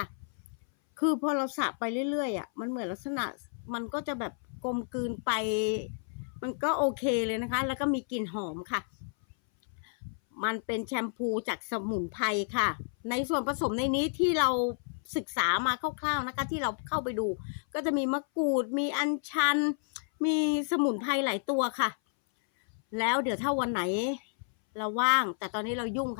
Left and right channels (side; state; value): right; silent; 57 dB below the other